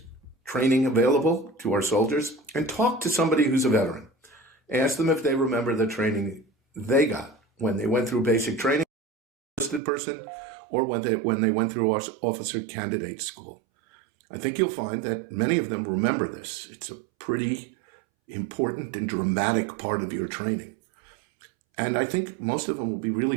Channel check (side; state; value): left; drops out; at 9.8 s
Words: training available to our soldiers. And talk to somebody who's a veteran. Ask them if they remember the training they got when they went through basic training, enlisted person, or when they went through officer candidate school. I think you'll find that many of them remember this. It's a pretty important and dramatic part of your training. And I think most of them will be